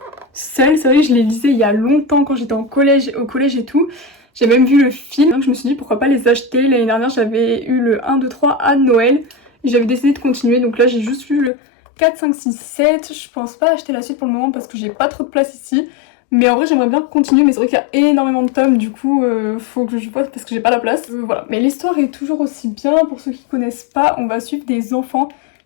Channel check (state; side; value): drops out; right; at 11.5 s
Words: Seul. C'est vrai que je les lisais il y a longtemps quand j'étais au collège et tout. J'ai même vu le film, donc je me suis dit pourquoi pas les acheter. L'année dernière j'avais eu le 1, 2, 3 à Noël. Et j'avais décidé de continuer, donc là j'ai juste lu le 4, 5, 6, 7. Je pense pas acheter la suite pour le moment parce que j'ai pas trop de place ici. Mais en vrai j'aimerais bien continuer, mais c'est vrai qu'il y a énormément de tomes, du coup faut que je vois parce que j'ai pas la place. Voilà, mais l'histoire est toujours aussi bien. Pour ceux qui connaissent pas, on va suivre des enfants